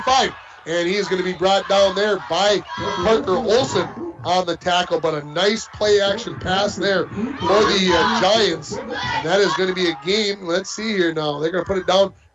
and he is going to be brought down there by Parker Olson on the tackle. But a nice play action pass there for the Giants, and that is going to be a gain. Let's see here now. They're going to put it down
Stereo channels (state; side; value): identical; both; correlation 1.00